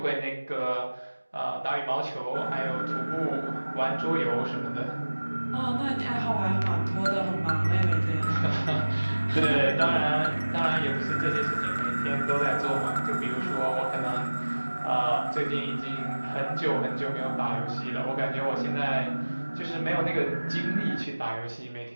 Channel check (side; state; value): both; inverted; correlation -1.00